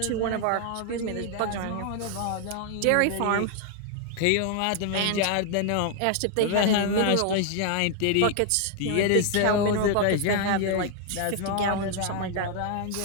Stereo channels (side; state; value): both; different; correlation 0.00